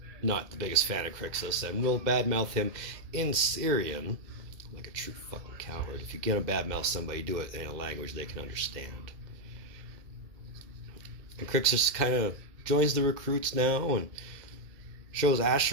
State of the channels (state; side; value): late; left; 2.0 ms